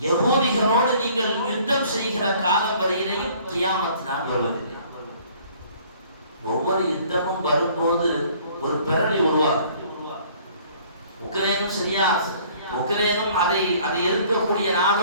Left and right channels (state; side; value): inverted; both; correlation -0.55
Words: யஹூதிகளோடு நீங்கள் யுத்தம் செய்கிற காலம் வரையிலேயும் கியாமத் நாள் வருவதில்லை. ஒவ்வொரு யுத்தமும் வரும்போது ஒரு பெரளி உருவாகும். உக்ரைனும் சரியா, உக்ரைனும் அதை எதிர்க்கக்கூடிய